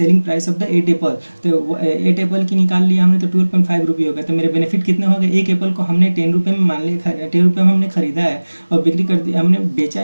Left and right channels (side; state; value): both; inverted; correlation -1.00